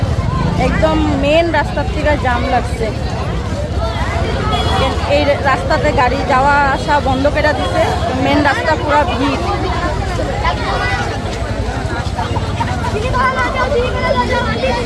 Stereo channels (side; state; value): both; identical; correlation 1.00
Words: একদম মেন রাস্তার থেকে জাম লাগছে। এই রাস্তাতে গাড়ি যাওয়া আসা বন্ধ করে দিছে, মেন রাস্তা পুরো ভিড়।